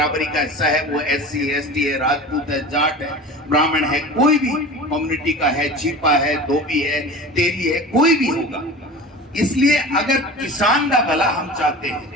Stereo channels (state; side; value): normal; both; correlation 0.35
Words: का हिस्सा है। वो SC ST है, राजपूत है, जाट है, ब्राह्मण है, कोई भी कम्युनिटी का है, छिपा है, धोबी है, तेली है, कोई भी होगा। इसलिए अगर किसान का भला हम चाहते